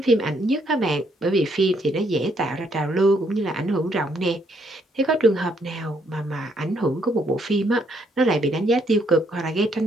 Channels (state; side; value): normal; both; correlation 0.71